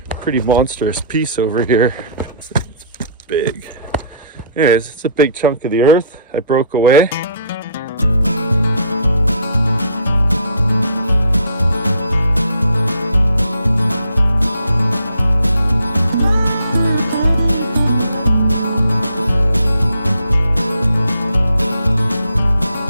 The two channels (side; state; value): both; inverted; correlation -0.60